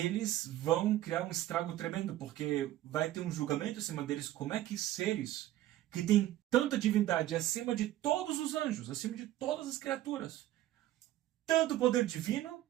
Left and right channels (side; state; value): left; quieter; 14.2 dB